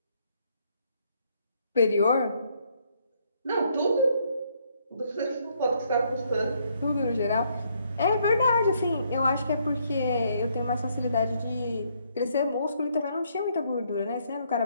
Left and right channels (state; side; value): inverted; both; correlation -0.71